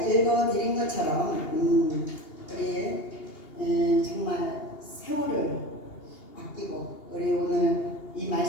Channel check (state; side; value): late; right; 2.8 ms